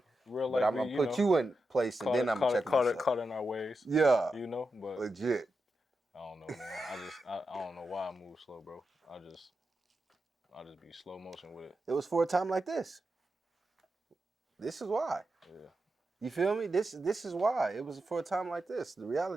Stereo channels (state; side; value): normal; both; correlation 0.88